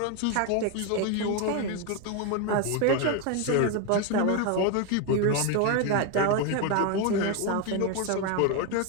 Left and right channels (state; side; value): different; both; correlation 0.01